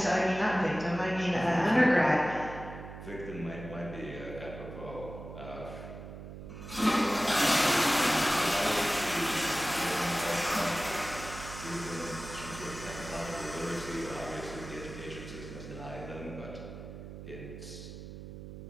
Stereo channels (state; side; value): noise; right; hum, 12 dB below the sound